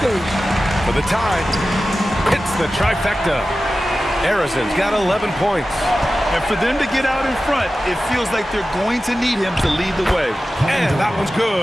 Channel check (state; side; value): normal; both; correlation 0.94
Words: For the tie, it's the trifecta. Arizon's got 11 points. And for them to get out in front, it feels like they're going to need him to lead the way. And that one's